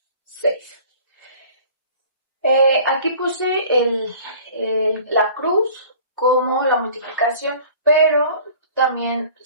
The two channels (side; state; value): both; inverted; correlation -0.47